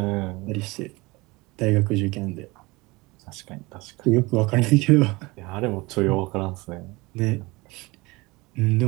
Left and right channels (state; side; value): quieter; left; 23.4 dB